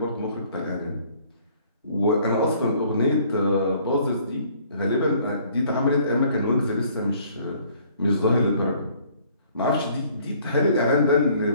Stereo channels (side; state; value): both; inverted; correlation -0.59